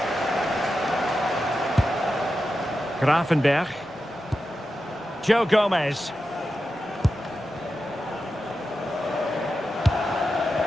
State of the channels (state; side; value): normal; both; correlation 0.90